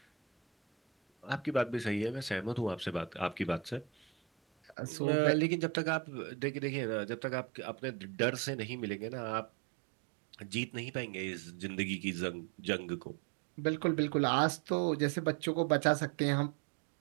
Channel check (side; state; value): left; drops out; at 4.8 s